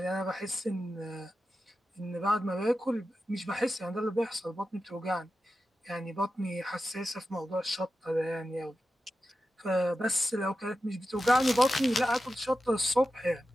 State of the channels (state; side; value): normal; both; correlation 0.92